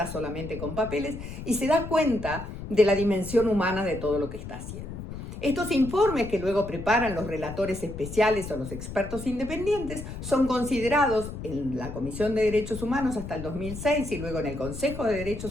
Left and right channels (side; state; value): left; noise; rumble, 9 dB below the sound